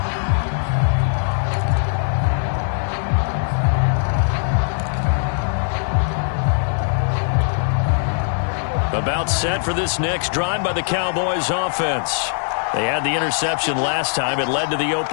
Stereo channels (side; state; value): right; silent; digital silence